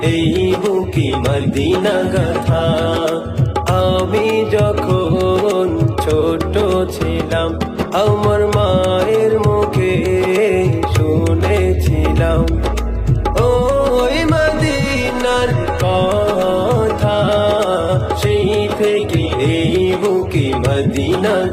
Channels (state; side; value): identical; both; correlation 1.00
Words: এই বুকে মদিনা গাথা। আমি যখন ছোট ছিলাম আমার মায়ের মুখে শুনেছিলাম ওই মদিনার কথা, সেই থেকে এই বুকে মদিনা